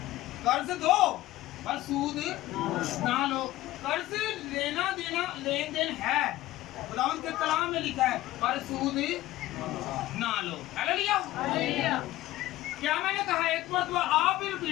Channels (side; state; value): right; quieter; 16.3 dB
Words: कर्ज दो और सूद ना लो। कर्ज लेना देना लेन देन है, खुदावंद के कलाम में लिखा है, पर सूद ना लो। हालेलुया। क्या मैंने कहा? एक मरतबा आप भी